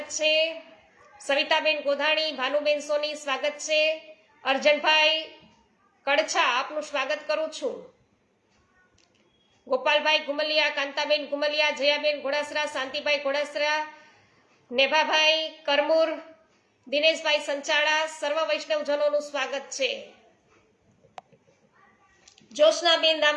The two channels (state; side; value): identical; both; correlation 1.00